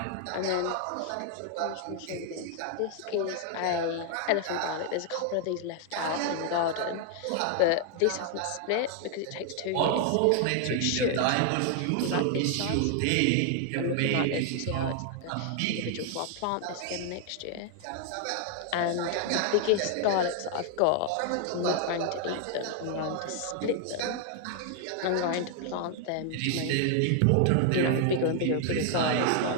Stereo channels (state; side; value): different; both; correlation 0.00